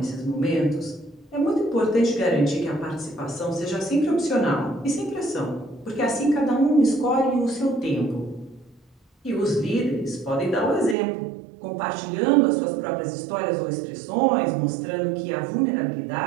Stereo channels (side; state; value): left; drops out; at 11.0 s